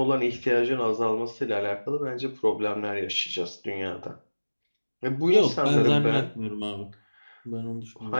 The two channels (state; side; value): inverted; both; correlation -1.00